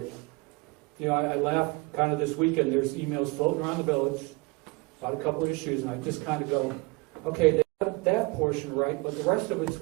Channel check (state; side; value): quieter; left; 26.5 dB